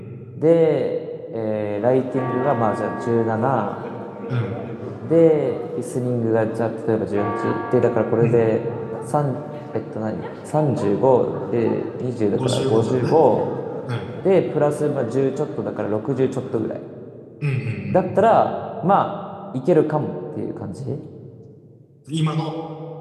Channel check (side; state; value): both; identical; correlation 1.00